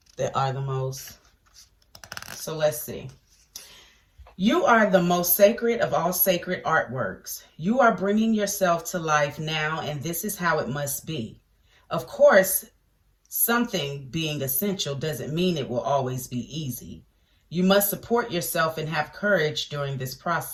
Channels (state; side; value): identical; both; correlation 1.00